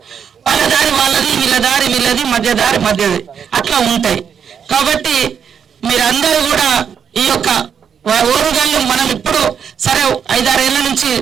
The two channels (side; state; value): left; quieter; 7.6 dB